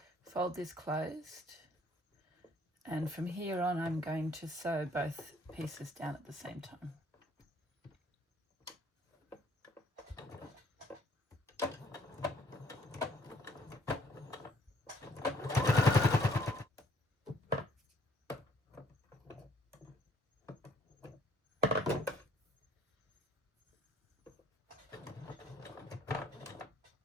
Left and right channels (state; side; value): normal; both; correlation 0.62